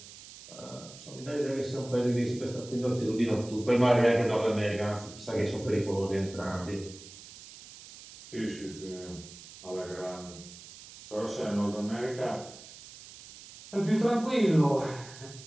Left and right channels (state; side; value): noise; right; hiss, 17 dB below the sound